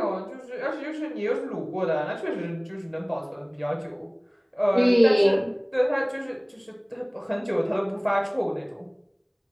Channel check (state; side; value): identical; both; correlation 1.00